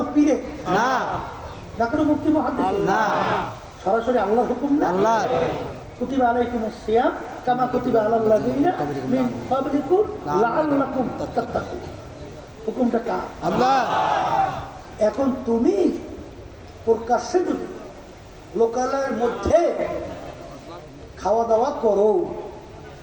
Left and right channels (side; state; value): both; identical; correlation 1.00